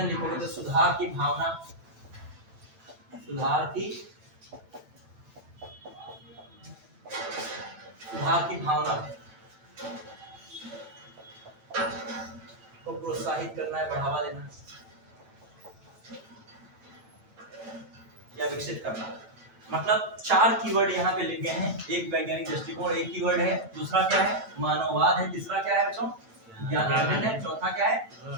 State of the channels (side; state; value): left; late; 9.0 ms